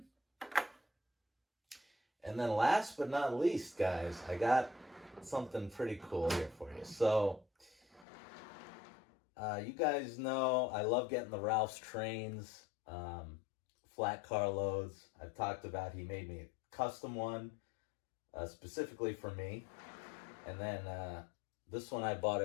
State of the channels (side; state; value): right; drops out; at 8.1 s